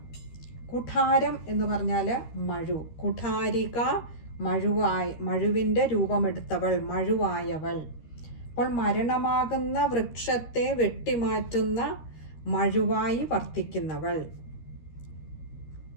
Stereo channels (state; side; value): late; right; 13 ms